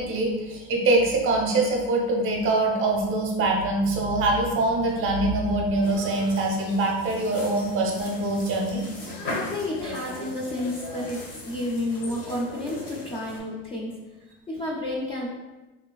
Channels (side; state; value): both; normal; correlation 0.19